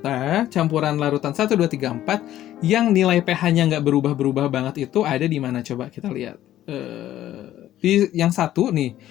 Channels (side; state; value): right; quieter; 13.0 dB